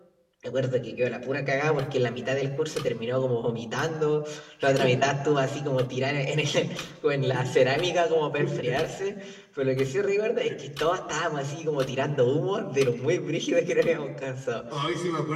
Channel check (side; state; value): both; identical; correlation 1.00